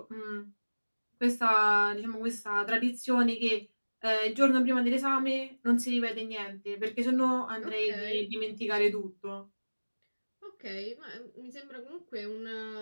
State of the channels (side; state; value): both; inverted; correlation -1.00